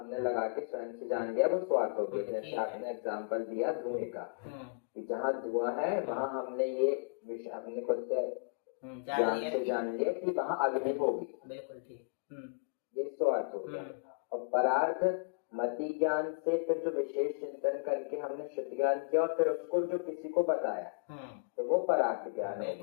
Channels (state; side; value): quieter; right; 33.6 dB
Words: लगा के स्वयं से जान लिया, वो स्वार्थ हो गया। जैसे आपने एग्जाम्पल दिया धुएं का, जहाँ धुआं है वहाँ हमने ये विषय अपने खुद से ज्ञान से जान लिया कि वहाँ अग्नि होगी। बिल्कुल ठीक। ये स्वार्थ हो गया। और परार्थ मति ज्ञान से फिर जो विशेष चिंतन करके हमने शुद्ध ज्ञान किया और फिर उसको जो किसी को बताया, तो वो परार्थ ज्ञान हो